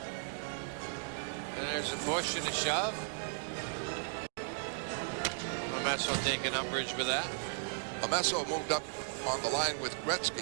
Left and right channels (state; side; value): silent; left; digital silence